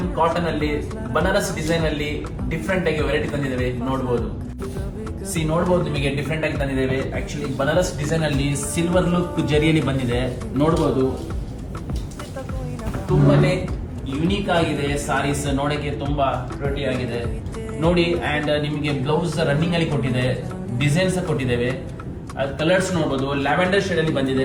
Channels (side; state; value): both; identical; correlation 1.00